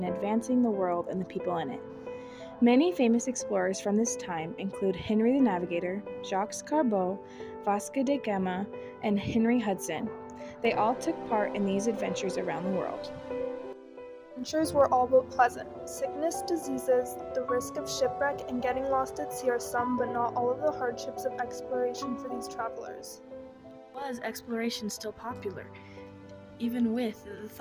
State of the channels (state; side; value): identical; both; correlation 1.00